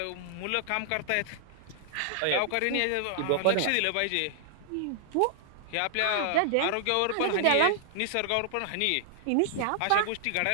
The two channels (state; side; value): different; both; correlation -0.01